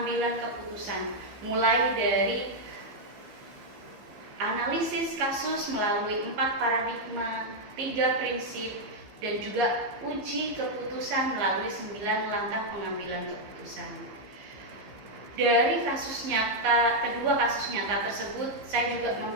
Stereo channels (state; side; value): late; left; 15 ms